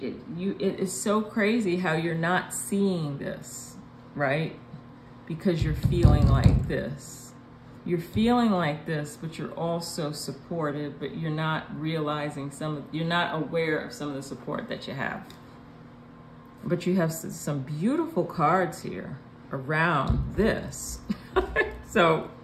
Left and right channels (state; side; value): identical; both; correlation 1.00